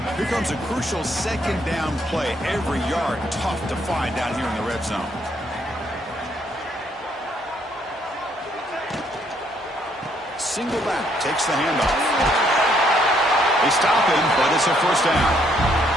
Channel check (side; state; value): both; normal; correlation 0.70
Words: Here comes a crucial second down play. Every yard tough to find down here in the red zone. Single back takes the handoff. They stop him, but it's a first down.